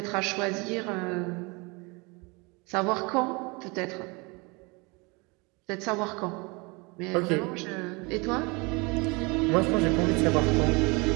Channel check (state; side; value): quieter; left; 28.0 dB